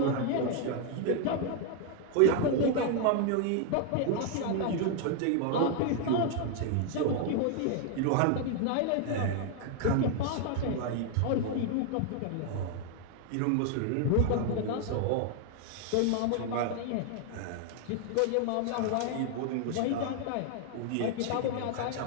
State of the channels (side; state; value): both; different; correlation 0.00